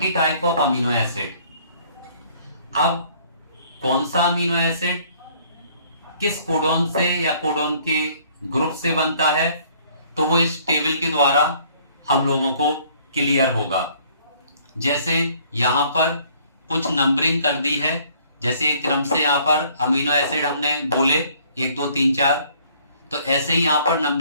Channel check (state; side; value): inverted; both; correlation -0.59